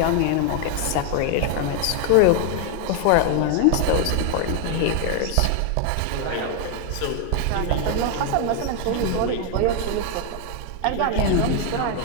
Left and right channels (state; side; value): different; both; correlation 0.00